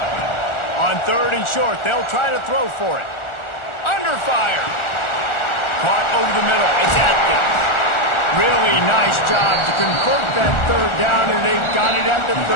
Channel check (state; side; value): late; right; 1.4 ms